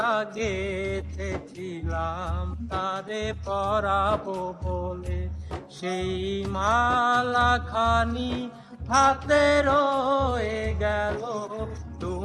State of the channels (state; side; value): identical; both; correlation 1.00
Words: গেথেছিলাম তারে পরাবো বলে, সেই মালা খানি হাতে রয়ে গেল।